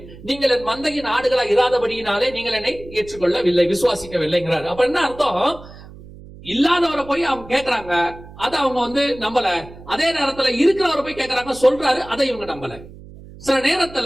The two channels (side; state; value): right; noise; hum, 18 dB below the sound